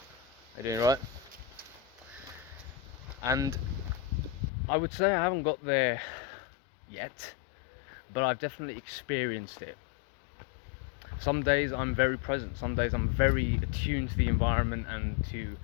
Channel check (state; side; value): drops out; right; at 4.5 s